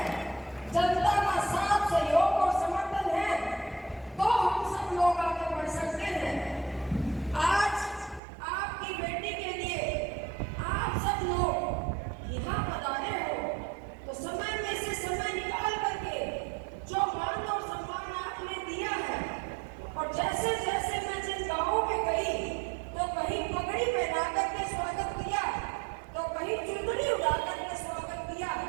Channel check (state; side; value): drops out; left; at 8.2 s